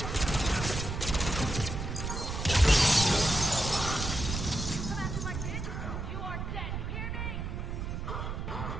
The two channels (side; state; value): right; noise; rumble, 4 dB below the sound